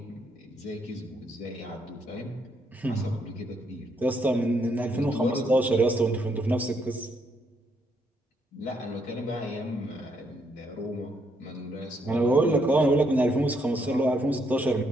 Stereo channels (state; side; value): normal; both; correlation 0.74